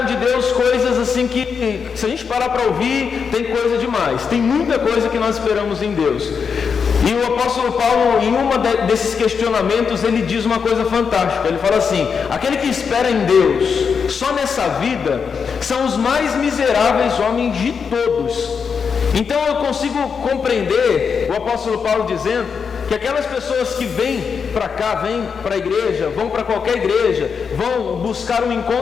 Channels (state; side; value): quieter; right; 6.1 dB